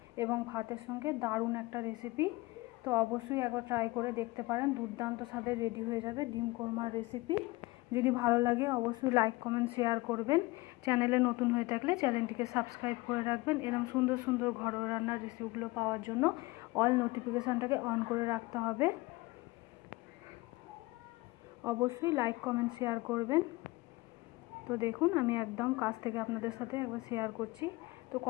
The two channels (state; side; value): quieter; right; 21.9 dB